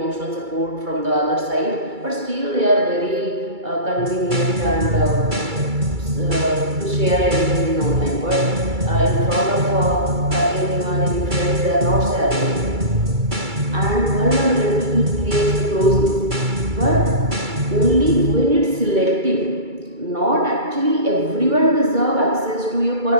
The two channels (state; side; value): late; left; 2.3 ms